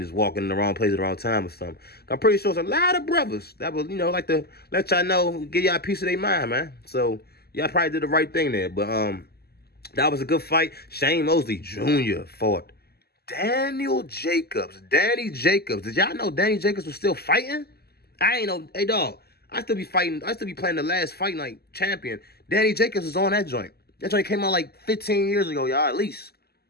walking in the wrong place at the wrong time or something. I'm pretty sure it's a lot of brothers that would, like to let y'all know, give y'all a piece of their mind, man. So y'all probably did the right thing there. But that was a good fight. Shane Mosley Jr. fought Danny Jacobs. Did y'all know Danny Jacobs was still fighting? I ain't know. Hey, dog. I still be fighting. I still be playing the last fight night champion. Danny Jacobs was on that joint. That joint came out like 15 years ago, y'all, at least.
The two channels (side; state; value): right; late; 0.46 ms